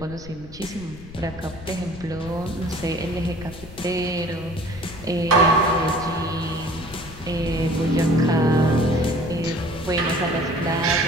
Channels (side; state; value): left; noise; rumble, 16 dB below the sound